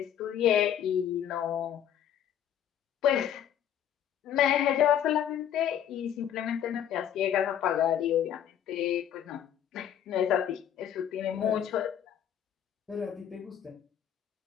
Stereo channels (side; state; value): right; quieter; 9.9 dB